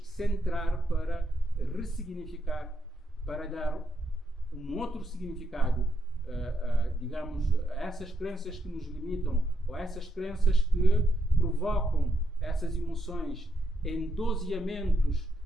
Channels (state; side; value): normal; both; correlation 0.79